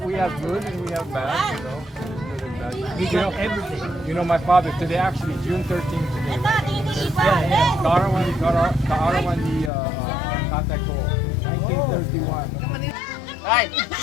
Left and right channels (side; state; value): right; drops out; at 9.7 s